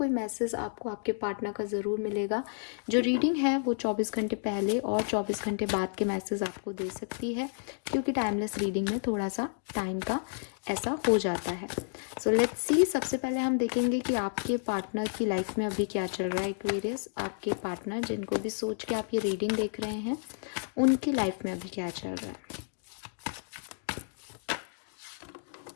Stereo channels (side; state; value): right; silent; digital silence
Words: मैसेज आपको आपके पार्टनर का ज़रूर मिलेगा। जो रीडिंग है वो 24 घंटे पहले और 24 घंटे बाद के मैसेज आपको दे सकती है, क्योंकि टाइमलेस रीडिंग में थोड़ा सा टाइम का ऐसा हो जाता है। सो लेट्स सी, सबसे पहले हम देखेंगे कि आपके पार्टनर की लाइफ में अभी क्या चल रहा है। एक्वेरियस, आपके पार्टनर जिनको भी सोच के आप ये रीडिंग देख रहे हैं उनकी लाइफ में अभी क्या चल रहा है।